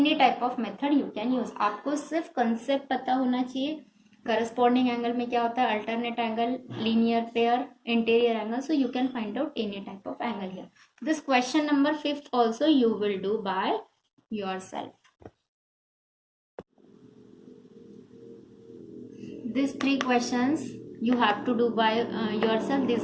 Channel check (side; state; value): both; identical; correlation 1.00